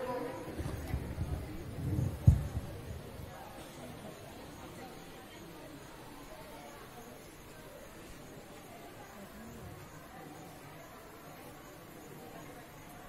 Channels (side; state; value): both; identical; correlation 1.00